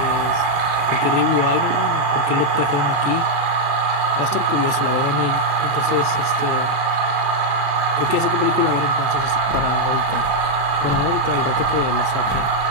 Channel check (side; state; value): left; late; 35 ms